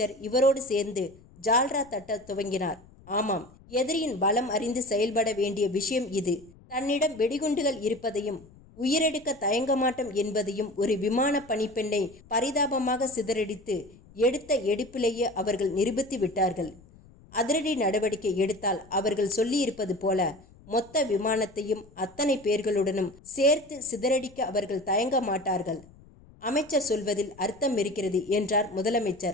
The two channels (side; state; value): left; noise; rumble, 24 dB below the sound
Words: இவரோடு சேர்ந்து ஜால்ரா தட்ட துவங்கினார். ஆமாம், எதிரியின் பலம் அறிந்து செயல்பட வேண்டிய விஷயம் இது. தன்னிடம் வெடிகுண்டுகள் இருப்பதையும் உயிரெடுக்க தயங்க மாட்டோம் என்பதையும் ஒரு விமான பணிப்பெண்ணை பரிதாபமாக சிதறடித்து எடுத்த எடுப்பிலேயே அவர்கள் நிரூபித்து விட்டார்கள். அதிரடி நடவடிக்கை எடுத்தால் அவர்கள் சொல்லியிருப்பது போல மொத்த விமானத்தையும் அத்தனை பேர்களுடனும் சேர்த்து சிதறடிக்க அவர்கள் தயங்க மாட்டார்கள். அமைச்சர் சொல்வதில் அர்த்தம் இருக்கிறது என்றார்